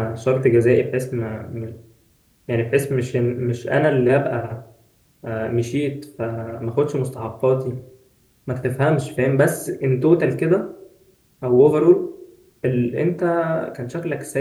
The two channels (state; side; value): identical; both; correlation 1.00